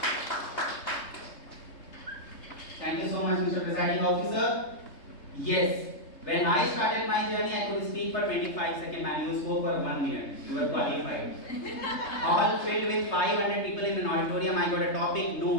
Thank you so much, Mr. Presiding Officer. Yes, when I started my journey, I could speak for 25 seconds, and you spoke for 1 minute. You were qualified. All filled with 500 people in an auditorium, I got a topic, no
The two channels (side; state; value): right; late; 3.3 ms